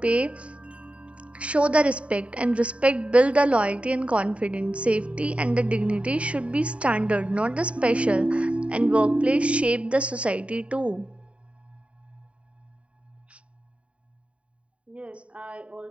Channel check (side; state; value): left; late; 0.063 ms